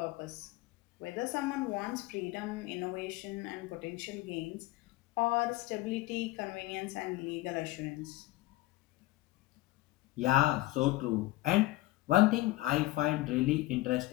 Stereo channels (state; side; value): quieter; right; 18.0 dB